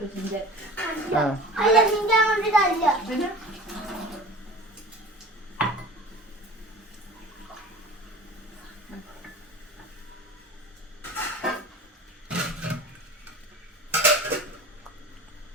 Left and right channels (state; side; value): normal; both; correlation 0.37